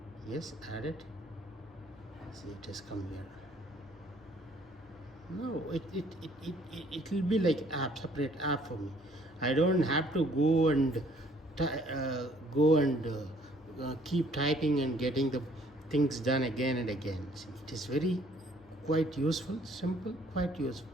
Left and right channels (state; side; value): normal; both; correlation 0.61